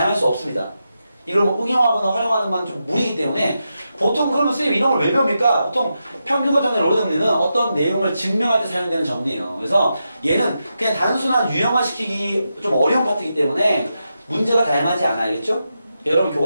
수 없습니다. 이걸 뭐 응용하거나 활용하는 건 좀 무리이기 때문에 보통 그러면 선생님 이런 걸 왜 배웁니까? 보통 평균값 정리, 롤의 정리는 어떤 내용을 증명할 때 사용되는 정리예요. 그래서 얘는 그냥 단순한 유형화시키기 좀 어려운 파트이기 때문에 문제가 다양하지 않아. 알겠죠? 여러분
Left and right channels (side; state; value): both; inverted; correlation -0.87